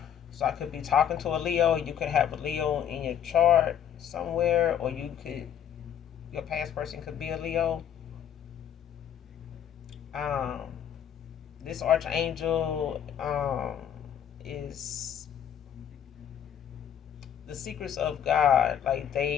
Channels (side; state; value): right; quieter; 9.2 dB